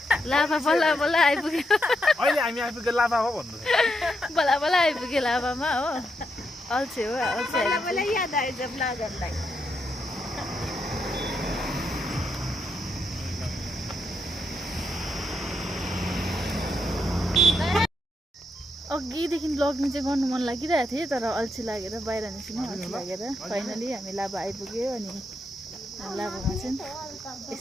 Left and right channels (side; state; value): both; normal; correlation 0.81